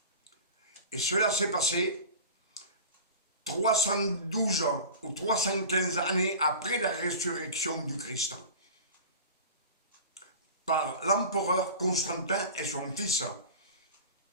Et cela s'est passé 312 ou 315 années après la résurrection du Christ, par l'empereur Constantin et son fils.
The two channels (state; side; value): inverted; both; correlation -0.35